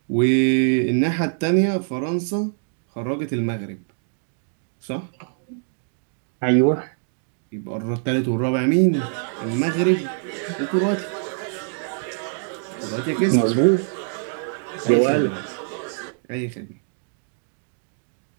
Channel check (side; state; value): left; silent; digital silence